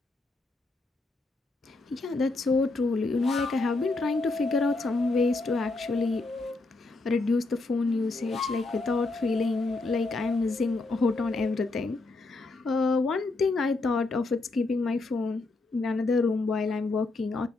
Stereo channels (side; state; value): right; quieter; 3.3 dB